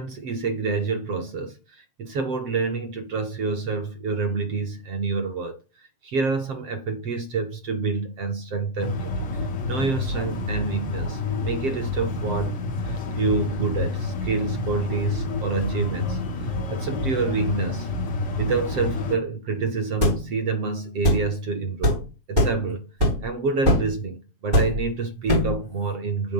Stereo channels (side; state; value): left; late; 7.6 ms